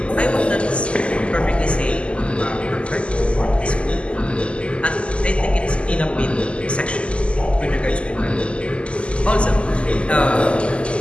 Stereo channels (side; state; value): right; late; 0.055 ms